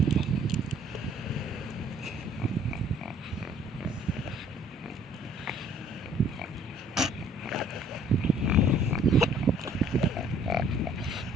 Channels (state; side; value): normal; both; correlation 0.57